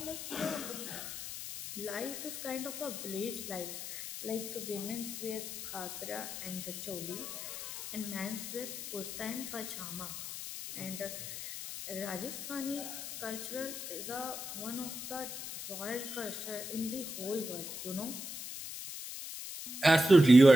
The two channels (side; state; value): left; noise; hiss, 8 dB below the sound